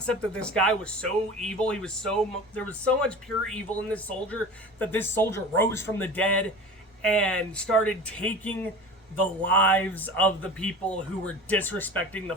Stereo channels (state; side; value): normal; both; correlation 0.36